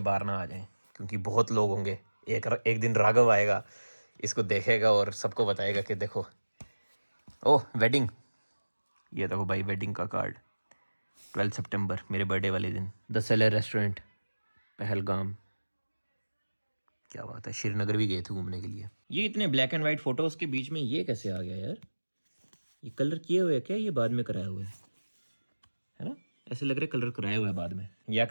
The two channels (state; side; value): inverted; both; correlation -1.00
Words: ना आ जाए, क्योंकि बहुत लोग होंगे। एक दिन राघव आएगा, इसको देखेगा और सबको बताएगा कि देखो ओह वेडिंग, ये देखो भाई वेडिंग का कार्ड 12 सितंबर मेरे बर्थडे वाले दिन। द सेलर रेस्टोरेंट पहलगाम, क्या बात है। श्रीनगर भी गए थे घूमने के लिए। ये इतने ब्लैक एंड वाइट फोटोज़ के बीच में ये कैसे आ गया यार? ये कलर किए हुए है क्या? ये बाद में कराया हुआ है ना? ऐसे लग रहा है कलर कराया हुआ है बाद में, या